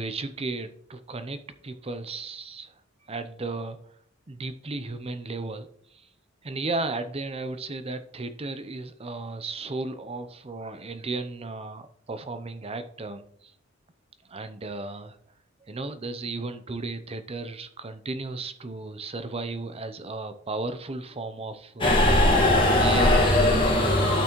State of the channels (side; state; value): both; normal; correlation 0.42